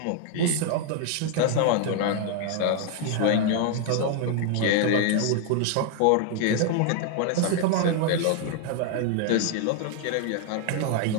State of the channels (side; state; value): both; different; correlation 0.00